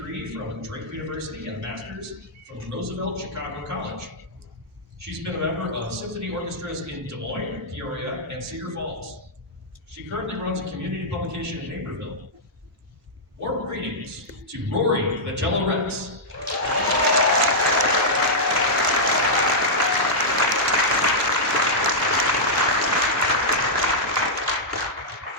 from Drake University and a master's from Roosevelt Chicago College. She's been a member of symphony orchestras in Des Moines, Peoria, and Cedar Falls. She currently runs a community publication in Naperville. Warm greetings to Rory the Jello Rex.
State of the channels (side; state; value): both; normal; correlation -0.08